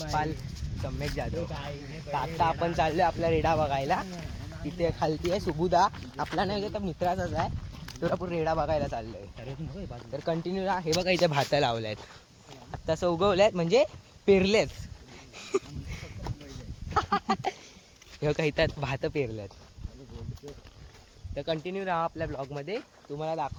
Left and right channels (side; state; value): both; identical; correlation 1.00